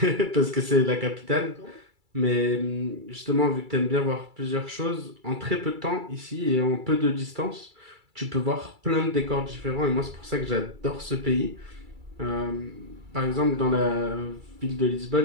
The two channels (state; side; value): late; left; 2.3 ms